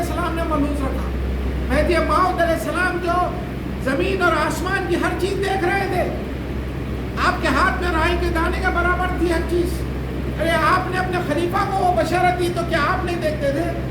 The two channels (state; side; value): identical; both; correlation 1.00